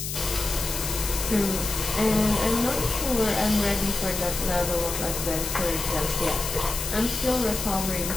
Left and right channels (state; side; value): noise; left; hiss, 5 dB below the sound